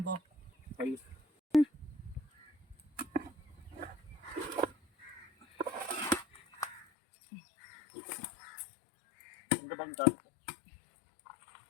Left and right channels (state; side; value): drops out; right; at 6.9 s